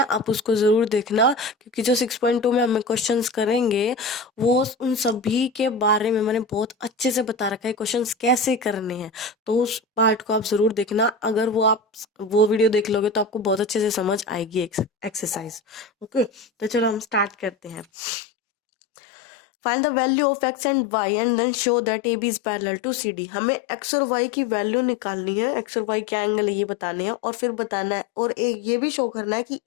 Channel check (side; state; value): right; drops out; at 17.9 s